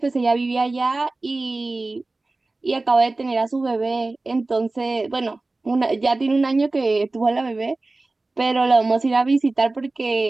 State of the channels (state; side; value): quieter; left; 3.2 dB